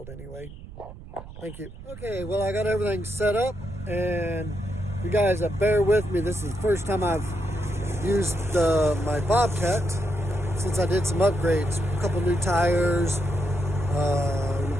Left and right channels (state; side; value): noise; right; rumble, 14 dB below the sound